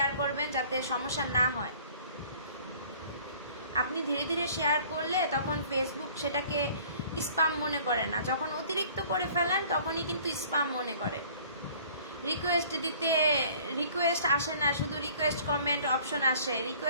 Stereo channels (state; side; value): inverted; both; correlation -0.52